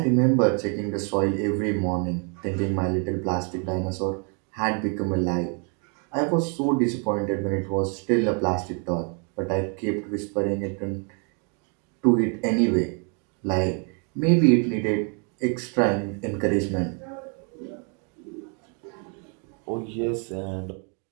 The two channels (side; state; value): left; quieter; 38.2 dB